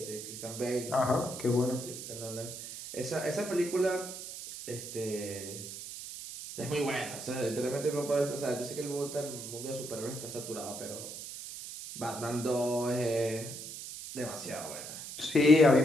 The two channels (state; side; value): noise; right; hiss, 10 dB below the sound